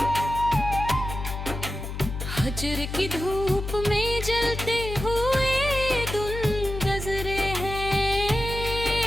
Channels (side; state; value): left; noise; hum, 7 dB below the sound